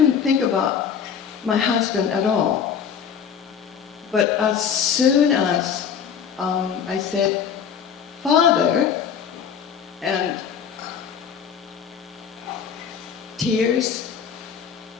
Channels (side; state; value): right; quieter; 7.5 dB